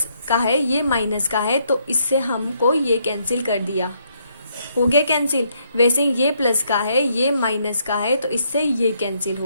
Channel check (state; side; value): inverted; both; correlation -0.73